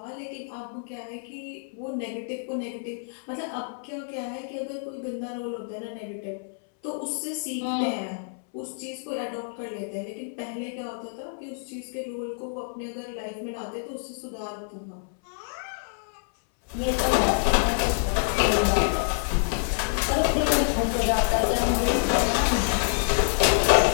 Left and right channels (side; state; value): right; silent; 60 dB below the other